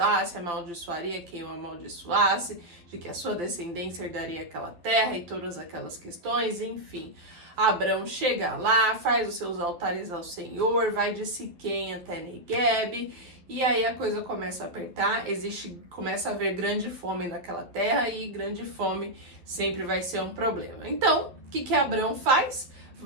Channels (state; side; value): late; left; 11 ms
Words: amaldiçoaria quem o amaldiçoasse, de que a sua descendência herdaria aquela terra e todas aquelas questões, enfim. Abrão chega lá, faz os seus altares ao Senhor, vai de Siquém até Negueb, e aí a coisa começa a apertar, começa a haver grande fome naquela terra, e grande fome sempre vai ser um problema. Então, o que Abrão faz?